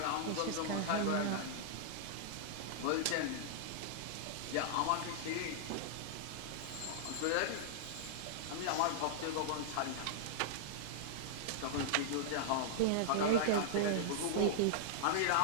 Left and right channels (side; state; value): both; different; correlation -0.01